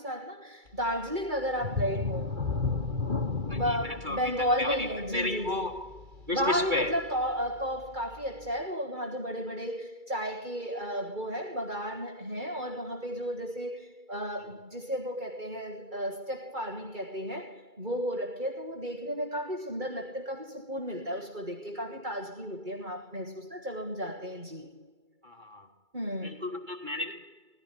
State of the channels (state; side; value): late; left; 2.3 ms